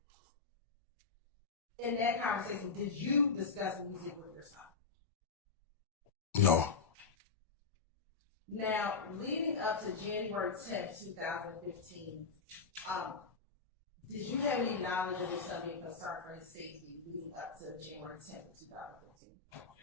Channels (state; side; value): quieter; right; 5.0 dB